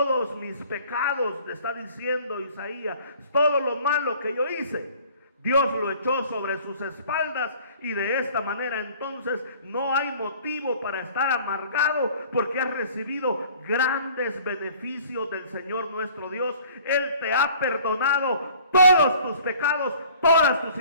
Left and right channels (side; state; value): both; inverted; correlation -0.51